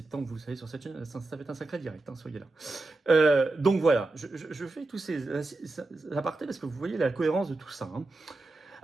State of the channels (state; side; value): quieter; left; 3.1 dB